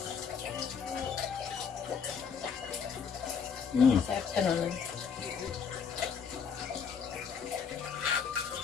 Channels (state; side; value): quieter; right; 6.4 dB